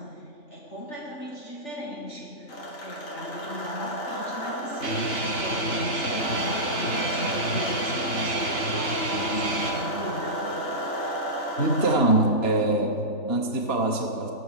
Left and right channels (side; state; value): right; late; 3.5 ms